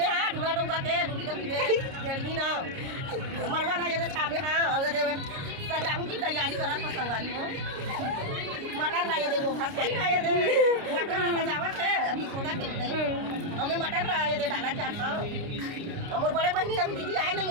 हाँ ढूंढा डूंगा के ढूंढी डूंढी दे जल्दी ना मरवा ना ये दे छापे हाँ और दे सजावट की तैयारी करा था संगवारी हो मटर लाया दे वो भात लाया दे मटर सजावट है अभी सोना के हमें मटर लाया दे डाला चाहता हमारे बड़े बहनी अभी दीदी आए नहीं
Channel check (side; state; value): left; late; 29 ms